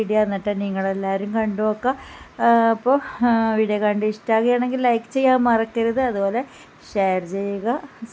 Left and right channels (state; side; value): identical; both; correlation 1.00